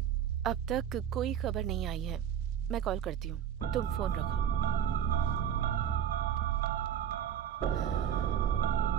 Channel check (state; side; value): quieter; left; 9.5 dB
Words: अब तक कोई खबर नहीं आई है। मैं कॉल करती हूँ, तुम फोन रखो।